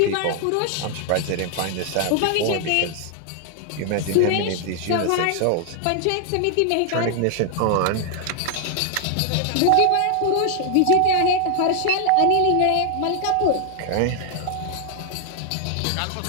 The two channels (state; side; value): different; both; correlation 0.00